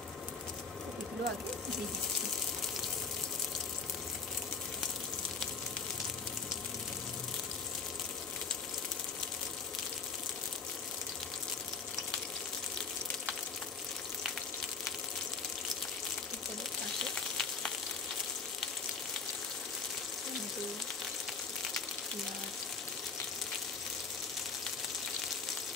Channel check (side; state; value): right; quieter; 5.0 dB